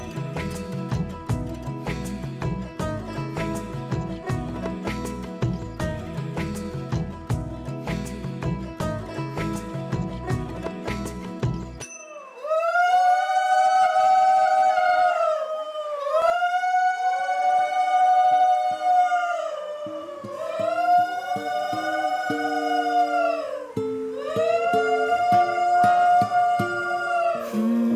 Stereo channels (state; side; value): identical; both; correlation 1.00